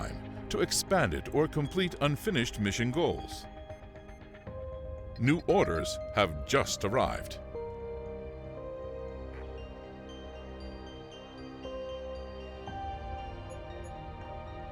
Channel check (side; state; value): both; identical; correlation 1.00